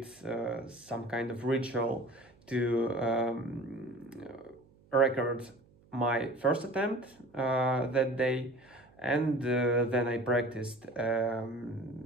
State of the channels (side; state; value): right; noise; hum, 29 dB below the sound